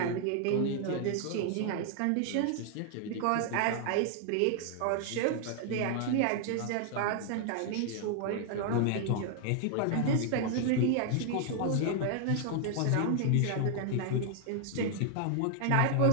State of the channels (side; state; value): both; different; correlation 0.00